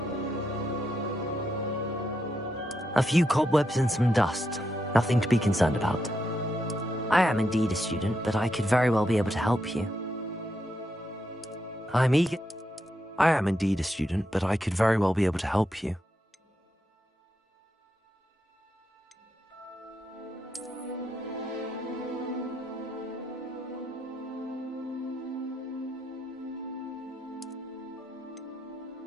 A few cobwebs and some dust. Nothing to be concerned about. I am indeed a student, but I could very well be able to help you. I am indeed a student, but I could very well be able to help you.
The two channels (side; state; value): both; normal; correlation 0.82